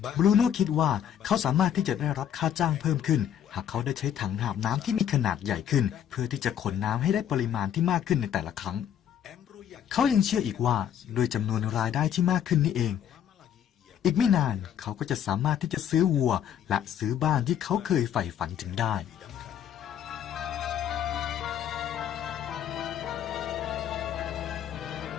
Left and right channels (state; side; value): quieter; right; 9.6 dB